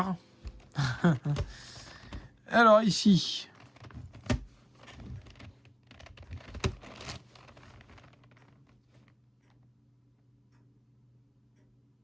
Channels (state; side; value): identical; both; correlation 1.00